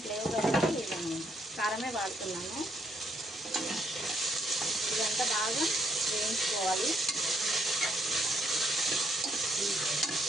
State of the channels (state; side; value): normal; both; correlation 0.72